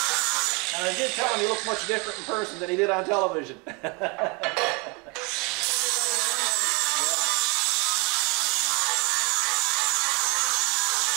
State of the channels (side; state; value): left; quieter; 30.4 dB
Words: And I did tell him he looked much different in person than he did on television.